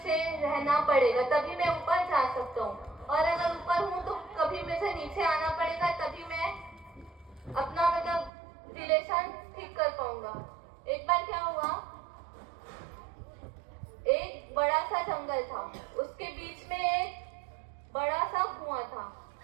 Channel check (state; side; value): drops out; left; at 8.3 s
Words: रहना पड़ेगा, तभी मैं ऊपर जा सकता हूँ। और अगर ऊपर हूँ तो कभी मुझे नीचे आना पड़ेगा, तभी मैं अपना मतलब रिलेशन ठीक कर पाऊंगा। एक बार क्या हुआ, एक बड़ा सा जंगल था, उसके बीच में एक बड़ा सा कुआं था।